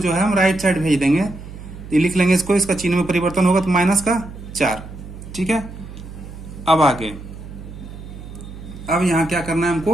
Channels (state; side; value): noise; right; hum, 13 dB below the sound